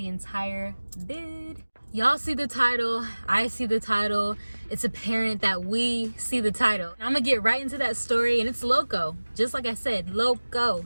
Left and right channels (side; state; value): both; inverted; correlation -1.00